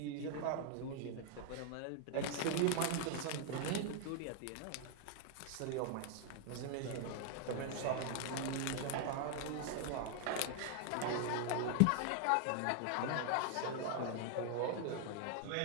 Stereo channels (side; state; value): both; different; correlation 0.00